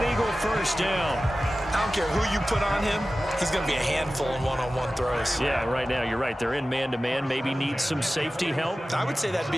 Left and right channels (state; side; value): normal; both; correlation 0.95